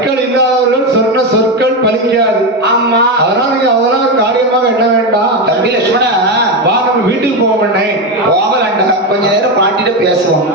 இல்லாதவர்கள் சொன்ன சொற்கள் பலிக்காது. ஆமா அதனால நீங்க அதெல்லாம் ஒரு காரியமாக என்ன வேண்டாம். தம்பி லட்சுமணா வா நம்ம வீட்டுக்கு போவோம்ண்ணே. போகலாண்டா, கொஞ்ச நேரம் பாட்டிட்ட பேசுவோம்.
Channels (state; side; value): normal; both; correlation 0.12